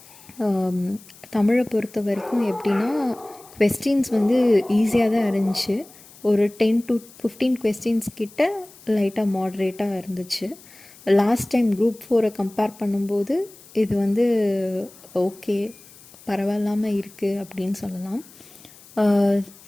தமிழை பொறுத்த வரைக்கும் எப்படின்னா, கொஸ்டின்ஸ் வந்து ஈஸியாக தான் இருந்துச்சு. ஒரு 10 to 15 கொஸ்டின்ஸ் கிட்ட லைட்டாக மாட்ரேட்டாக இருந்துச்சு. லாஸ்ட் டைம் குரூப் 4 கம்பேர் பண்ணும்போது இது வந்து ஓகே, பரவாயில்லாமல் இருக்குது அப்படின்னு சொல்லலாம்.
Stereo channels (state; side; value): noise; left; hiss, 23 dB below the sound